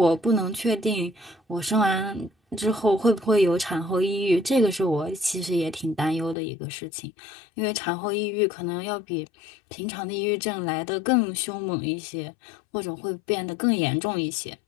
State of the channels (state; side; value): drops out; right; at 6.4 s